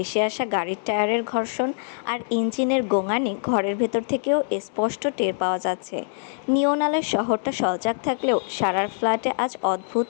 আসা গাড়ির টায়ারের ঘর্ষণ আর ইঞ্জিনের গোঙানি ঘরের ভেতর থেকেও স্পষ্ট টের পাওয়া যাচ্ছে। নিয়ন আলোয় শহরটা সজাগ থাকলেও সারার ফ্ল্যাটে আজ অদ্ভুত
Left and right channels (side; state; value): right; silent; digital silence